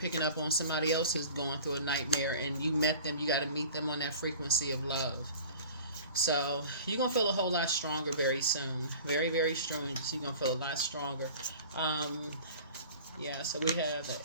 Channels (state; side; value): inverted; both; correlation -0.42